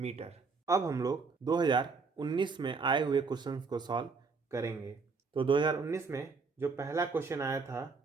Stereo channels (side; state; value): left; quieter; 4.6 dB